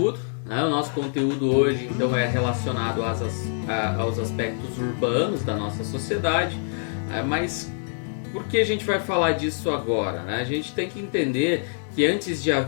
O nosso conteúdo hoje então é relacionado aos aspectos urbanos da nossa sociedade, mas por que a gente vai falar disso agora? A gente tem que entender que antes de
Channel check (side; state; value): right; silent; 62 dB below the other